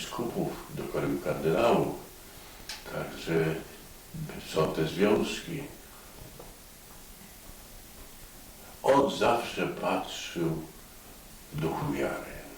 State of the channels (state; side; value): identical; both; correlation 1.00